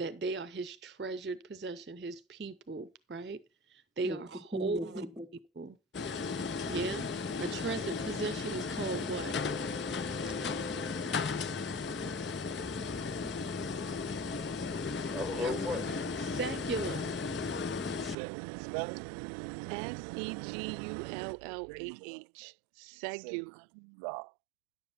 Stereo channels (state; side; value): drops out; left; at 18.2 s